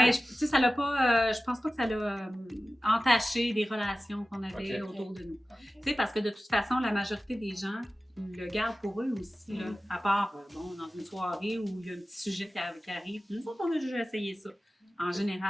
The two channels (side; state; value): both; normal; correlation 0.96